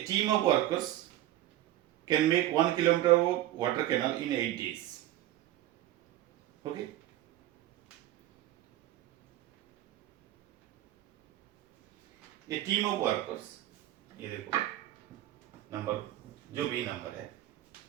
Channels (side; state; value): left; quieter; 14.4 dB